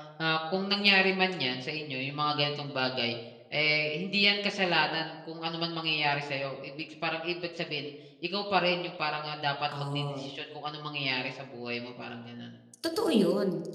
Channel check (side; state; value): both; identical; correlation 1.00